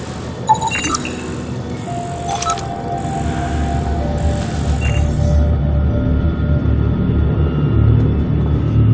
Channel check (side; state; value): both; identical; correlation 1.00